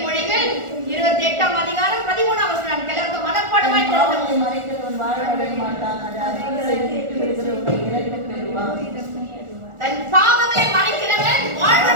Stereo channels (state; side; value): late; left; 1.4 ms